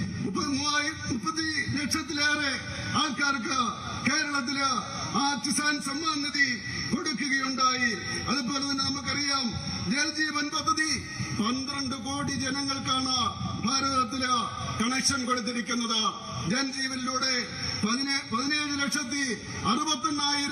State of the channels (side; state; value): both; identical; correlation 1.00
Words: ലക്ഷത്തിലേറെ ആൾക്കാർക്ക് കേരളത്തില് ആ കിസാൻ സമ്മാൻ നിധി കൊടുക്കുകയുണ്ടായി. അതുപോലെ തന്നെ നമുക്കറിയാം, ജൽജീവൻ പദ്ധതി 12 കോടി ജനങ്ങൾക്കാണ് ഭാരതത്തില് കണക്ഷൻ കൊടുത്തിരിക്കുന്നത്. ജൻജീവനിലൂടെ